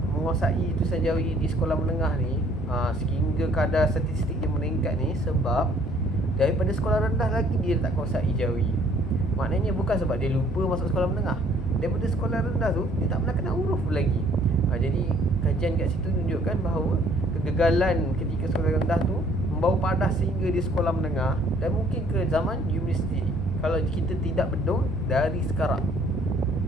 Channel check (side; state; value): both; normal; correlation 0.60